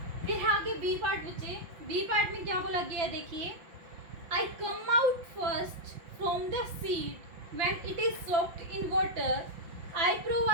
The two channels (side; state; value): left; late; 5.8 ms